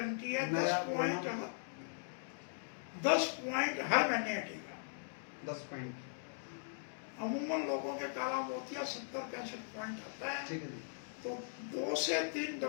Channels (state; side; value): silent; right; digital silence